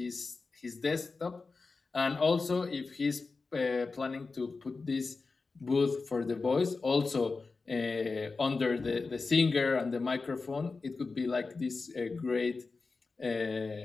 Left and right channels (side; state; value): right; quieter; 4.1 dB